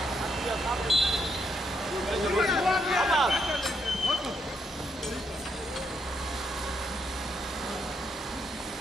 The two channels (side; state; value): both; normal; correlation 0.77